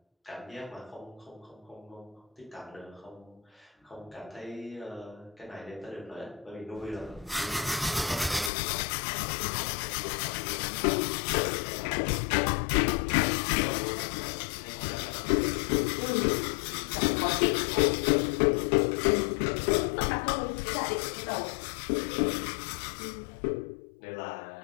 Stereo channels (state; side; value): drops out; right; at 8.5 s